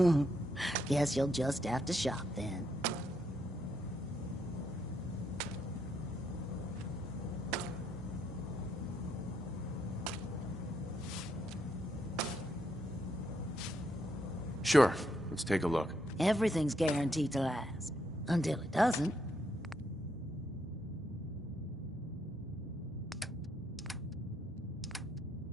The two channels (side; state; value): both; normal; correlation 0.76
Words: Guess you'll just have to shop then. Sure. Let's take a look. Everything's guaranteed to last. Until it doesn't.